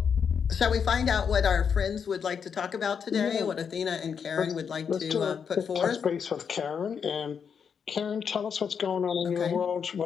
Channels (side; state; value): right; quieter; 6.8 dB